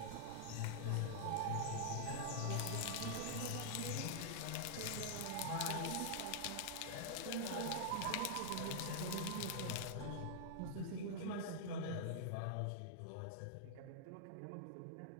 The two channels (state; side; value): different; both; correlation -0.01